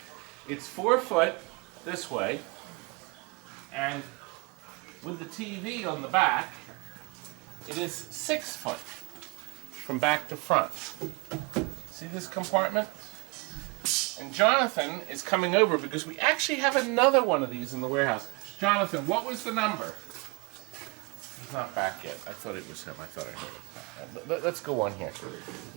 It's 4 foot this way, and with the TV on the back, it is 6 foot from back to front. See this compartment? And Jonathan is coming over because we actually have another one of these in the warehouse. Jonathan, what was the number? He's not back yet. I thought it was him. I thought I heard it. Let's go on here.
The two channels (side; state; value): left; quieter; 29.4 dB